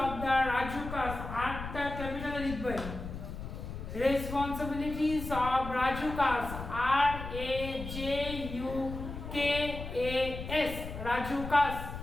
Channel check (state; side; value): noise; left; rumble, 8 dB below the sound